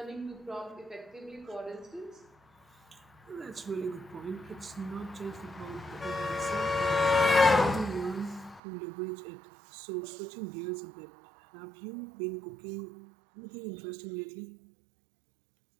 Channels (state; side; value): drops out; left; at 8.6 s